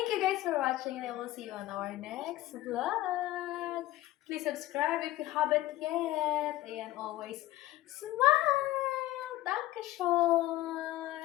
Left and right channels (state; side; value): quieter; right; 16.0 dB